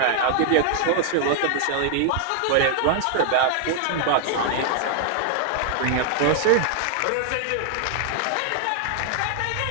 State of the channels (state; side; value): different; both; correlation 0.00